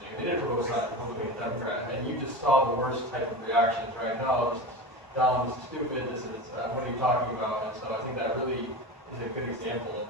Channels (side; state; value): both; normal; correlation 0.27